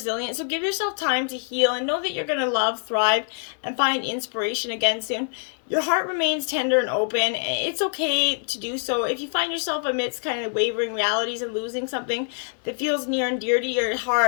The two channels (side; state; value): right; silent; 62 dB below the other